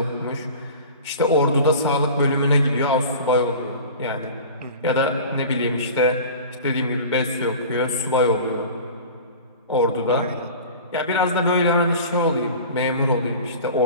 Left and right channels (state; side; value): inverted; both; correlation -0.38